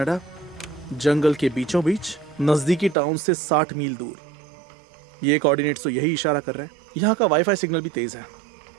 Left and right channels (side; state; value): left; drops out; at 3.0 s